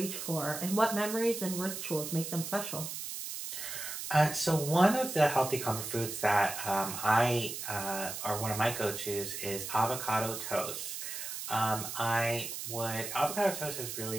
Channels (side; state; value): right; noise; hiss, 6 dB below the sound